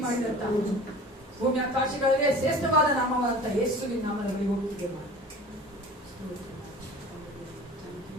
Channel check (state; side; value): normal; both; correlation 0.41